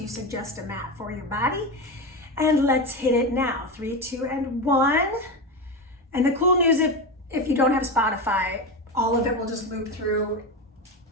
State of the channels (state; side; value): normal; both; correlation 0.18